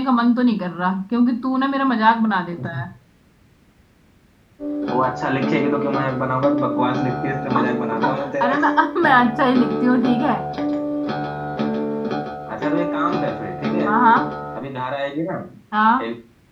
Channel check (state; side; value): identical; both; correlation 1.00